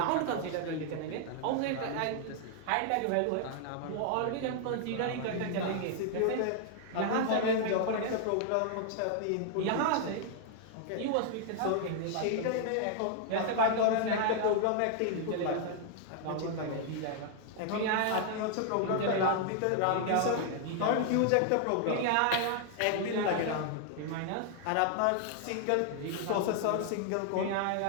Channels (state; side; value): different; both; correlation 0.00